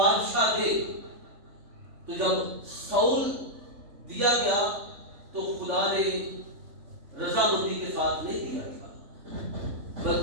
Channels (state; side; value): late; left; 3.4 ms